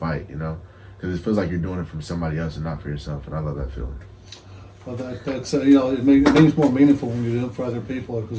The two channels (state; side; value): identical; both; correlation 1.00